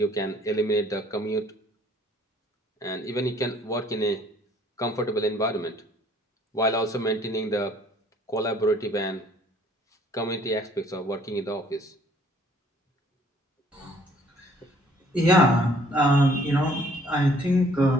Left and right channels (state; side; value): normal; both; correlation 0.59